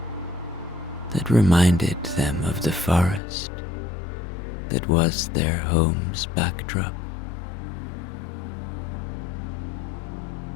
that reminded them of the forest that was their home's backdrop.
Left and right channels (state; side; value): drops out; right; at 3.2 s